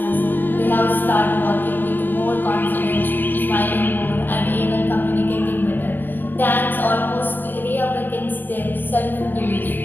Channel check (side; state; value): right; late; 0.092 ms